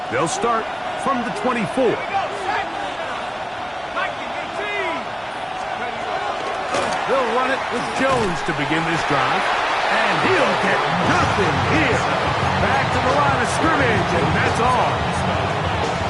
They'll start from the 24. They'll run it with Jones to begin this drive. And he'll get nothing here. Back to the line of scrimmage, and that's all.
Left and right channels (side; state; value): both; identical; correlation 1.00